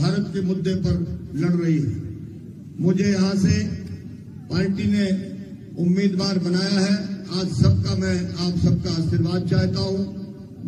के मुद्दे पर लड़ रही है। मुझे यहां से पार्टी ने उम्मीदवार बनाया है। आज सबका मैं आप सबका आशीर्वाद चाहता हूं,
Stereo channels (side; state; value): both; identical; correlation 1.00